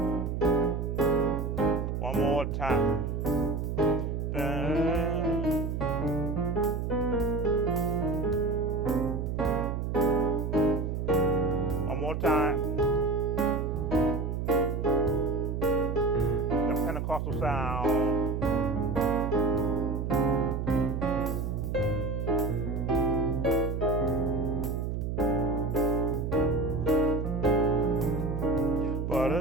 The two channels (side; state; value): right; noise; hum, 2 dB below the sound